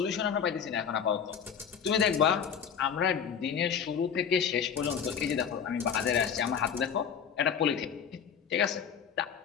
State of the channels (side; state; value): right; quieter; 7.5 dB